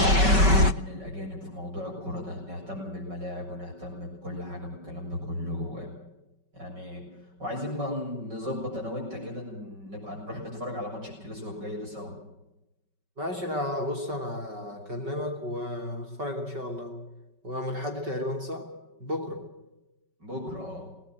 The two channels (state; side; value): late; left; 5.3 ms